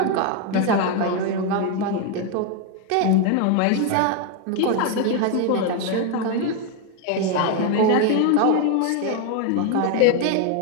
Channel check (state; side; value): different; both; correlation 0.01